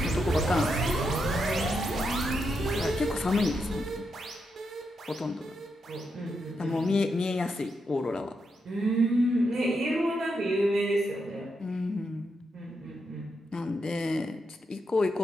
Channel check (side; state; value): both; normal; correlation 0.83